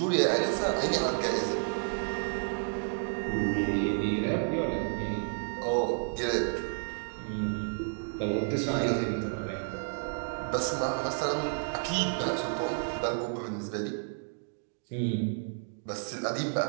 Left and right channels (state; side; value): silent; left; digital silence